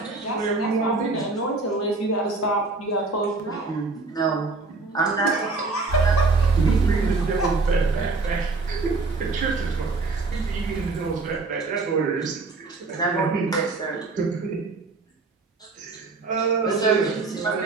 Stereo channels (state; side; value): quieter; left; 3.8 dB